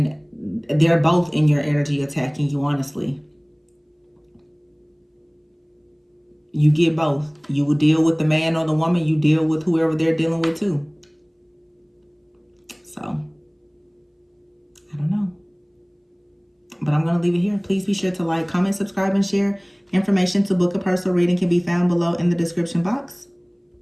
they're both in your energy attacking you, honestly. You get both. You will deal with the man or the woman. You deal with whoever they're dealing with too. So, I don't know. But I'm going to leave it here. Please be sure to like, comment, subscribe, and share. Information to book a personal reading can be found below in the description box.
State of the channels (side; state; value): both; identical; correlation 1.00